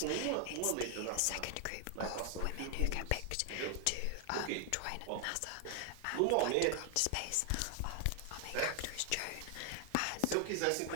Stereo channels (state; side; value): different; both; correlation 0.00